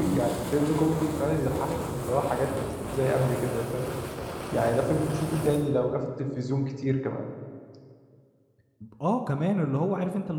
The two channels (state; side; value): identical; both; correlation 1.00